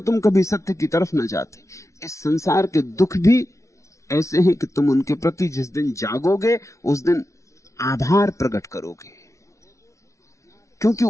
कभी सत्य की तरफ न जाते। इस संसार के दुख भी ऐसे हैं कि तुम उनके प्रति जिस दिन जागोगे उस दिन आभार प्रकट करोगे, क्योंकि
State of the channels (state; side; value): late; right; 0.14 ms